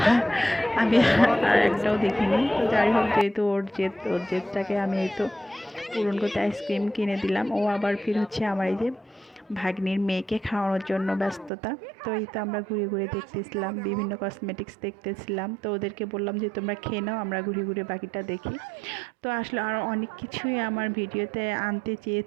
আমি আর একটাও দেখিনি। তো যাই হোক, যেহেতু ওর জেদটাকে আমি এই তো পূরণ করতে আইসক্রিম কিনে দিলাম। ও আবার ফির হচ্ছে আমার এই যে ভাগ্নির মেয়েকে খাওয়ানোর জন্য ব্যস্ততা। তো এই তো আমরা ঘুরে ঘুরে দেখতেছিলাম, বিভিন্ন কসমেটিক্স দেখতেছিলাম। তো ওদেরকে বললাম যে তোমরা খেয়ে নাও, আমরা ঘুরে ঘুরে বাকিটা দেখি। তো আসলে আরও অনেক কিছুই আমার ভিডিওতে আনতে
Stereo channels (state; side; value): drops out; left; at 11.5 s